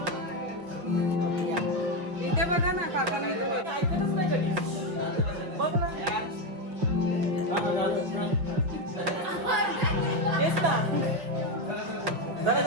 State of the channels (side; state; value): left; late; 5.3 ms